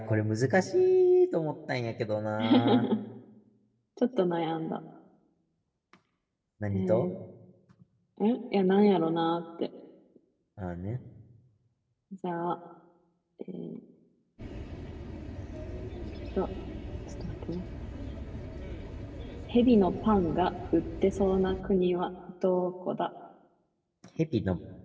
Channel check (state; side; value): identical; both; correlation 1.00